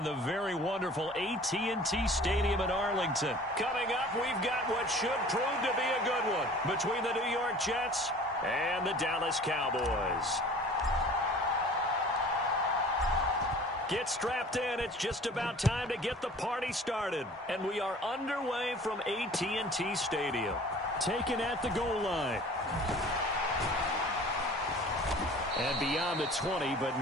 the very wonderful AT&T Stadium in Arlington. Coming up, we've got what should prove to be a good one between the New York Jets and the Dallas Cowboys. Get strapped in. It's just about time to get the party started. And we are underway from AT&T Stadium. Taken at the goal line. And beyond the 20, but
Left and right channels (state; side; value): normal; both; correlation 0.46